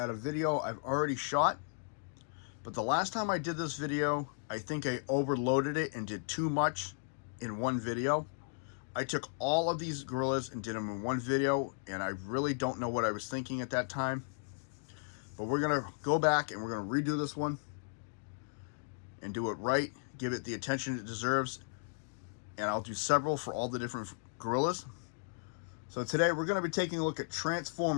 a video I've already shot, but the last time I did this video I think I overloaded it and did too much in one video. I took all of these gorillas and did them in one video, and I really don't know what I was thinking at that time, but we're going to go back and we're going to redo this one and do it right, give it the attention it deserves, and I'll do several for all the different gorillas. So today we're going to be taking a look at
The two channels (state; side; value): silent; right; digital silence